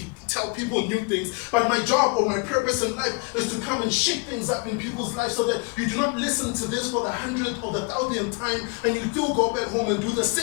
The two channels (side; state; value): right; quieter; 31.2 dB